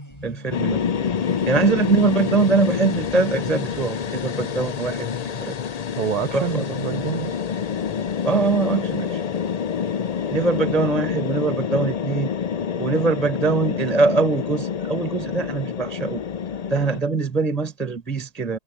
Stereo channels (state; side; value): late; right; 1.8 ms